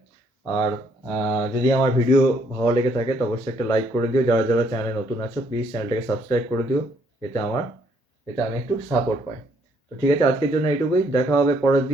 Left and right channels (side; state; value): both; normal; correlation 0.68